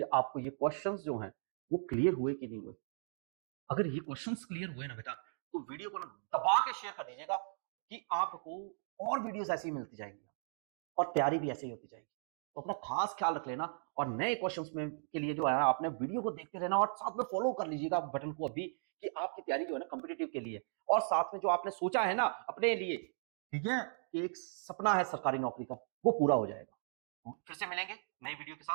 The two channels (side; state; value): left; silent; digital silence